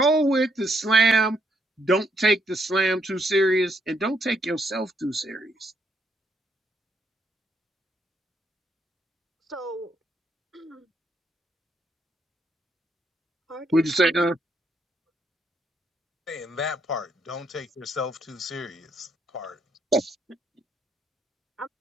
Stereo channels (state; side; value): normal; both; correlation 0.74